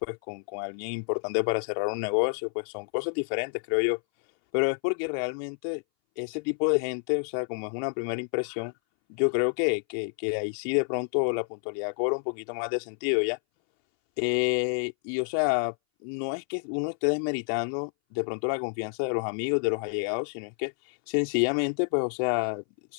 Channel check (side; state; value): right; silent; 59 dB below the other